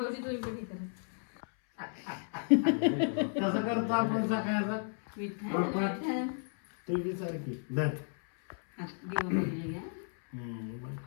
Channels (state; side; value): silent; right; 55 dB below the other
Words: तुम्ही पण हे करा. कसं करतो आपण सकाळचा. तुझी सारखी धर.